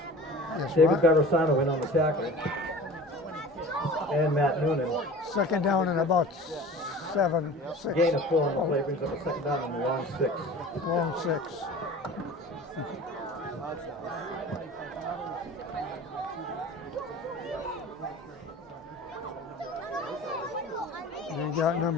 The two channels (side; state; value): both; normal; correlation 0.40